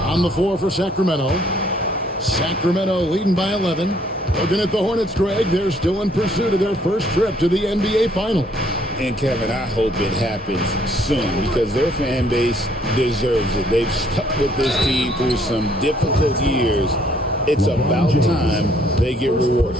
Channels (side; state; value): both; normal; correlation 0.64